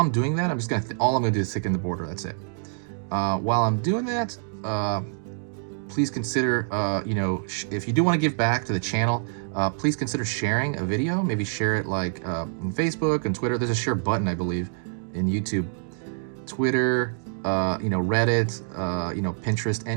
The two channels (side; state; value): left; silent; digital silence